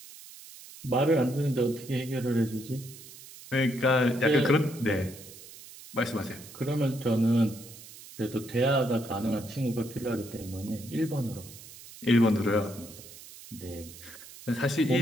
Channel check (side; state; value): right; noise; hiss, 17 dB below the sound